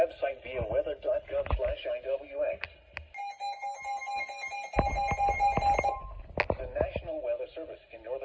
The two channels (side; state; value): both; identical; correlation 1.00